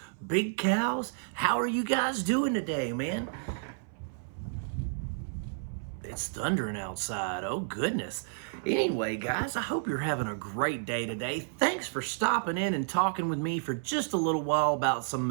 big cows? How are you guys doing today, man? It's thundering outside. Oh, goodness. Anyway, guys, I hope you're having a great day today. Thanks for stopping in and talking with me for just a little while about some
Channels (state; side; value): silent; left; 57 dB below the other